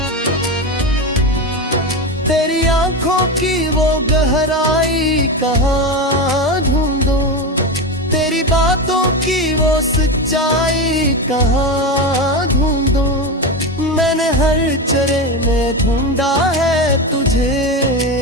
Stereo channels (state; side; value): normal; both; correlation 0.18